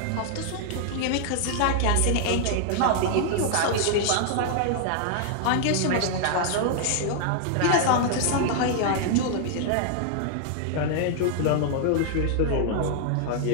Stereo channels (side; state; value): both; different; correlation -0.01